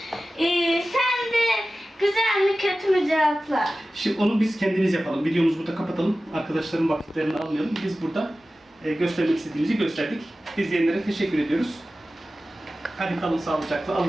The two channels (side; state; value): both; normal; correlation 0.96